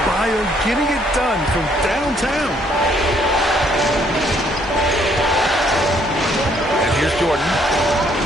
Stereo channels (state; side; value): normal; both; correlation 0.67